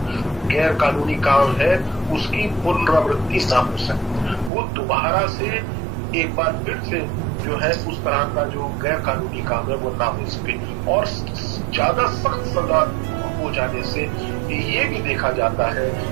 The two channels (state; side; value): drops out; left; at 4.5 s